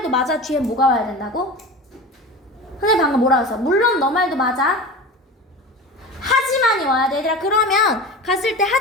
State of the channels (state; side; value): normal; both; correlation 0.31